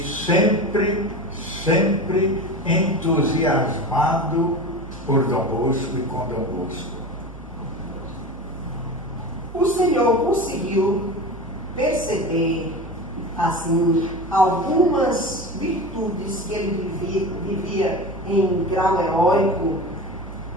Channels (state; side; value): noise; right; hum, 15 dB below the sound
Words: sempre entusiasmado por Dom Bosco e com Dom Bosco. O senhor conseguiu perceber, assim, algumas virtudes que ele vivia em grau heróico?